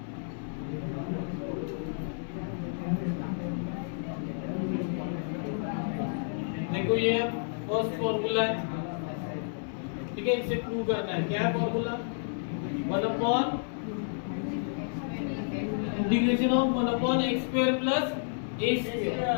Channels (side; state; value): right; silent; 57 dB below the other